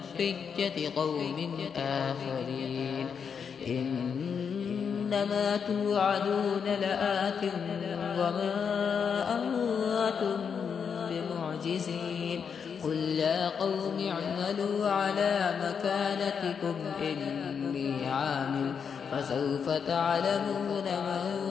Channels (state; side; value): quieter; right; 6.7 dB